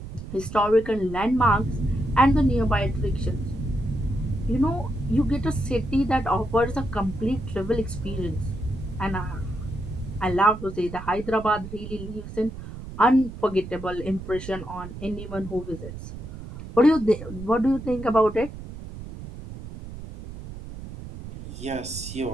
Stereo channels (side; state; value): right; noise; rumble, 11 dB below the sound